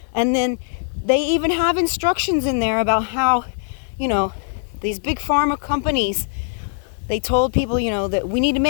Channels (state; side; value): silent; right; 64 dB below the other